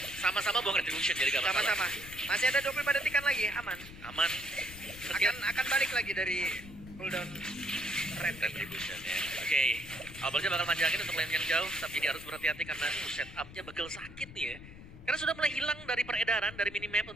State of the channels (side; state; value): left; noise; rumble, 16 dB below the sound